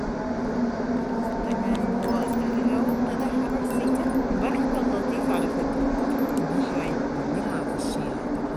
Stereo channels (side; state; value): both; identical; correlation 1.00